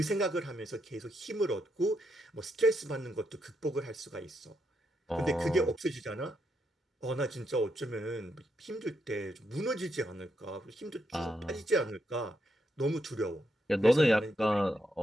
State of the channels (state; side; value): normal; both; correlation 0.80